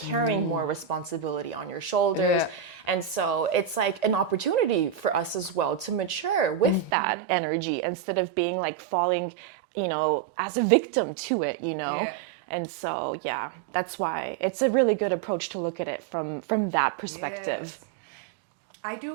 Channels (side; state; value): left; drops out; at 6.9 s